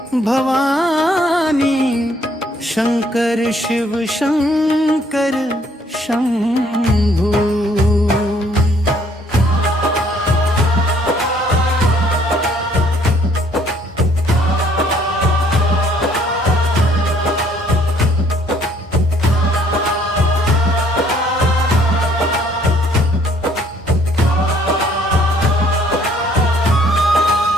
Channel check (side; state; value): both; normal; correlation 0.63